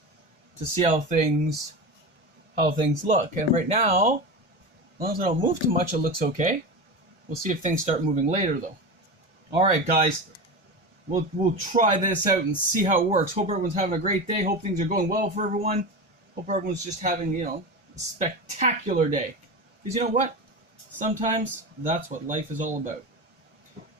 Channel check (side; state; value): both; normal; correlation 0.24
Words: to see how things look. And right now, as long as I don't move too much, it looks okay. We'll see if things start moving later though. Alright guys. We'll try this out and see how it works. Hope everyone's having a great day. Hope things are going well for everyone. Hope everyone's just having, a spectacular day. Because you know what? Sometimes that's what life is all about.